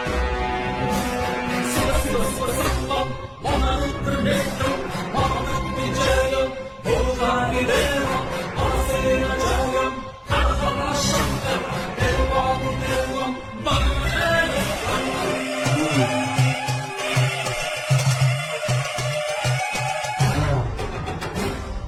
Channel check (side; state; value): both; identical; correlation 1.00